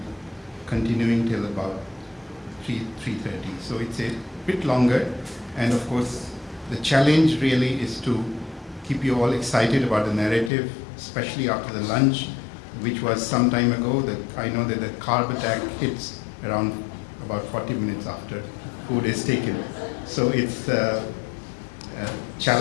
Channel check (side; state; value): right; drops out; at 10.5 s